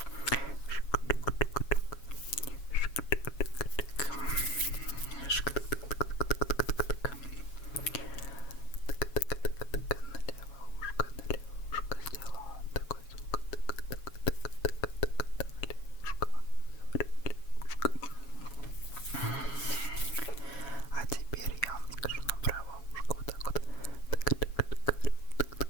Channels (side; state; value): right; late; 7.2 ms